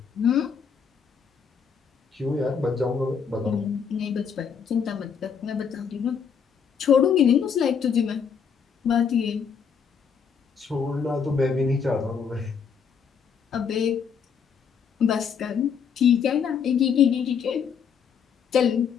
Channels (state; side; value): quieter; right; 6.8 dB